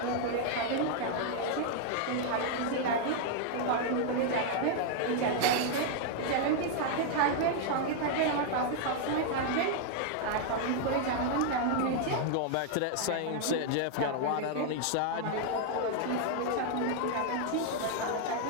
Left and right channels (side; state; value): both; different; correlation 0.00